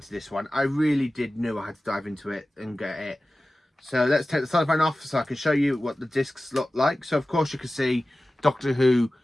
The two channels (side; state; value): both; normal; correlation 0.96